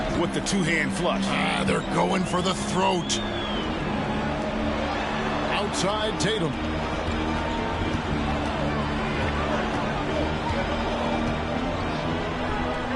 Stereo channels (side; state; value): both; identical; correlation 1.00